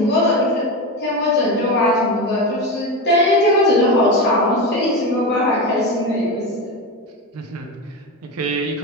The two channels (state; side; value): normal; both; correlation 0.18